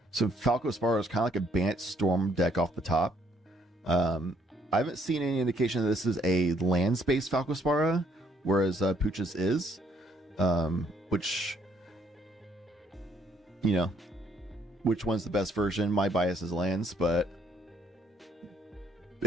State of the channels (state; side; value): normal; both; correlation 0.68